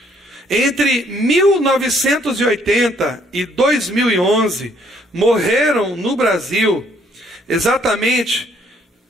Entre 1980 e 2011, morreram no Brasil exatamente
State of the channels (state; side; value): normal; both; correlation 0.66